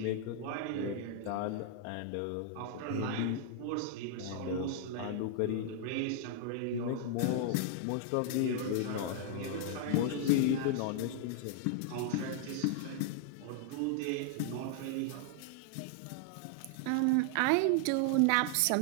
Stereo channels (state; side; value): different; both; correlation 0.00